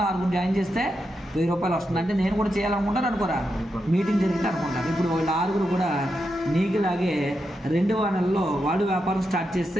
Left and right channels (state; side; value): normal; both; correlation 0.86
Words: 6 జాయిన్ చేస్తే 1000 రూపాయలు వస్తుంది. అంటే నేను కూడా చేయాలనుకుంటాను అనుకోరా, మీటింగ్ జరిగితే అనుకుంటాను. ఇప్పుడు వీళ్ళ 6 కూడా నీకులాగే 2వ నెలలో వాళ్ళు వ్యాపారం స్టార్ట్